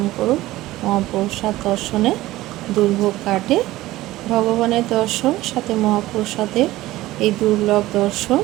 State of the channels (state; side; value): quieter; left; 16.9 dB